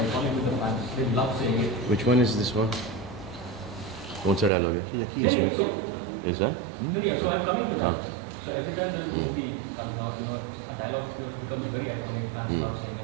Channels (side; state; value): left; drops out; at 4.5 s